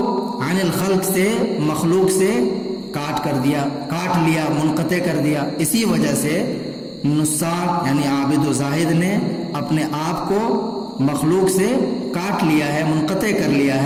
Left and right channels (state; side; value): identical; both; correlation 1.00